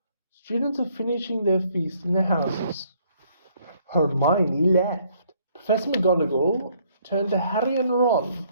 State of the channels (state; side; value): inverted; both; correlation -0.65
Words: Students are finishing their feast in their houses. Hermione left. Professor McGonagall turned to Harry and Ron.